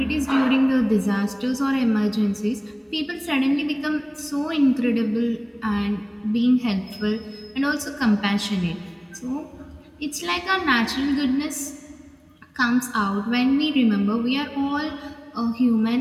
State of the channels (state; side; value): identical; both; correlation 1.00